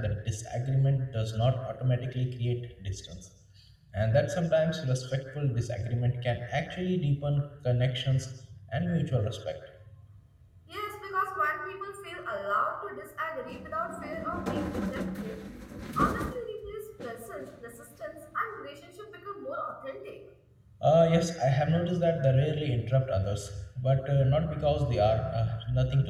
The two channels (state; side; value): identical; both; correlation 1.00